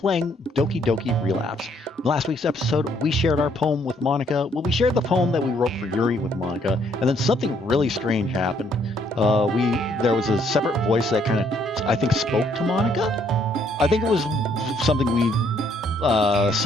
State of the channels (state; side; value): normal; both; correlation 0.68